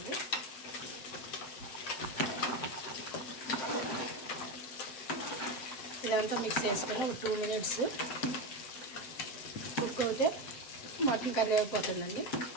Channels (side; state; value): right; late; 7.5 ms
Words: ఇదంతా మిక్స్ చేసుకొని ఒక 2 మినిట్స్ కుక్ అవుతే మటన్ కర్రీ అయిపోతుందండి.